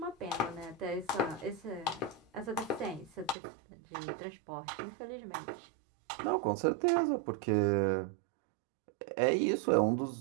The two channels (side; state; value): left; drops out; at 3.4 s